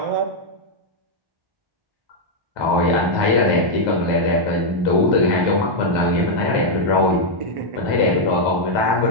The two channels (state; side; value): late; left; 1.2 ms